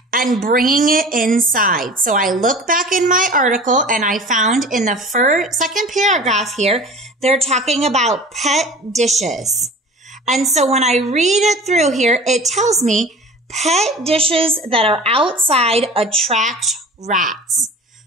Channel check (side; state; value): both; normal; correlation 0.40